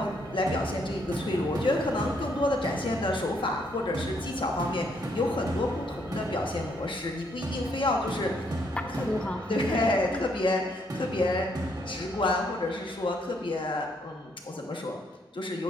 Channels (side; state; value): both; normal; correlation 0.71